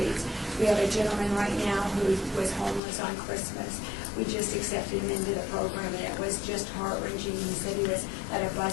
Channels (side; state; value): right; drops out; at 2.8 s